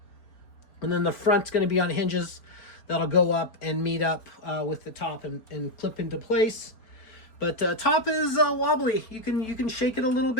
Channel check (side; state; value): right; late; 4.3 ms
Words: And then the front's going to be on hinges that'll go up and meet up with the top and clip into place. But top is wobbly. You can shake it a little